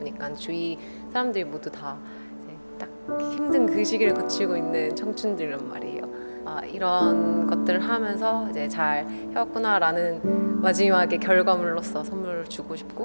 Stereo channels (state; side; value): inverted; both; correlation -1.00